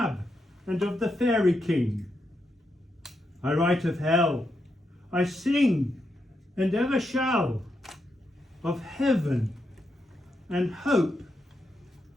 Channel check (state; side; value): normal; both; correlation 0.83